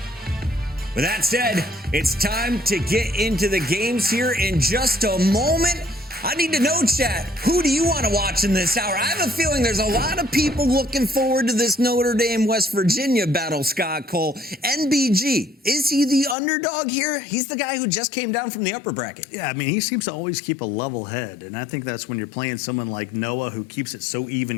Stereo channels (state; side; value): drops out; right; at 16.4 s